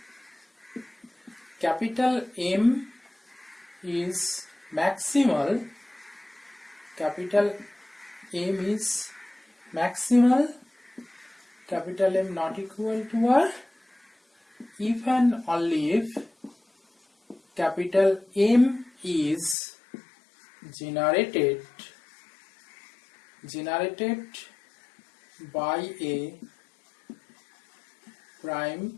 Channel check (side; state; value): right; drops out; at 19.6 s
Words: capital M is maximal. Capital M is maximal. Capital M not equal to R if and only if capital M is generated by a